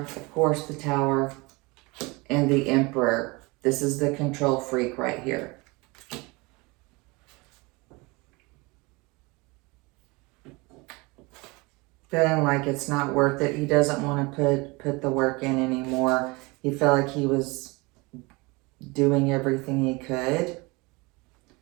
of course, the Tower, and the Emperor. This is the control freak right here. feeling like it's not worth it. He doesn't want to put the work in anymore. He felt like he was doing everything he could.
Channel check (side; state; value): left; quieter; 25.5 dB